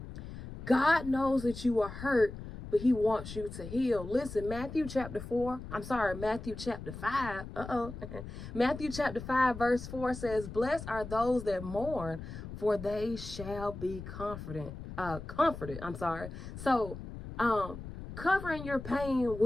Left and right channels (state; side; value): noise; left; rumble, 11 dB below the sound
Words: God knows that you are hurt, but he wants you to heal. Listen, Matthew chapter 5. Matthew chapter 5, verse 4 says, "Blessed are those that mourn, for they shall be comforted. So, covering your pain